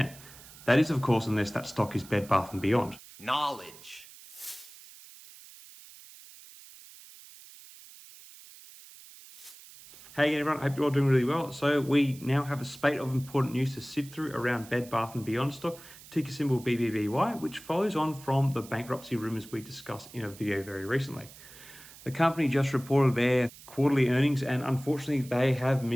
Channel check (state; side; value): noise; right; hiss, 19 dB below the sound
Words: That is, of course, unless that stock is Bed Bath & Beyond. Knowledge. Hey everyone, I hope you're all doing really well. So we now have a spate of important news to sift through around Bed Bath & Beyond stock, ticker symbol BBBY, which follows on from the bankruptcy rumours we discussed in a video very recently. The company just reported their quarterly earnings and unfortunately they have